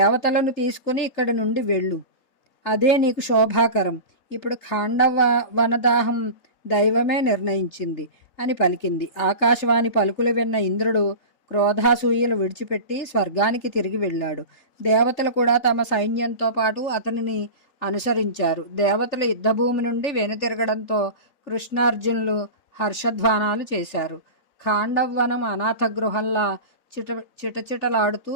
తీసుకుని ఇక్కడి నుండి వెళ్ళు. అదే నీకు శోభాకరం. ఇప్పుడు ఖాండవ వనదాహం దైవమే నిర్ణయించింది అని పలికింది. ఆకాశవాణి పలుకులు విన్న ఇంద్రుడు క్రోధాసూయలు విడిచిపెట్టి స్వర్గానికి తిరిగి వెళ్ళాడు. దేవతలు కూడా తమ సైన్యంతో పాటు అతనిని అనుసరించారు. దేవతలు యుద్ధభూమి నుండి వెనుతిరగడంతో కృష్ణార్జునులు హర్షధ్వానాలు చేశారు. ఖాండవ్వనం అనాథ గృహంలా చిటచిటలాడుతూ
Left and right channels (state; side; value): late; right; 3.8 ms